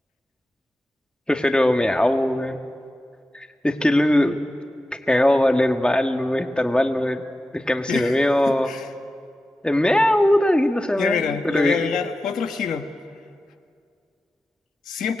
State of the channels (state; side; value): normal; both; correlation 0.93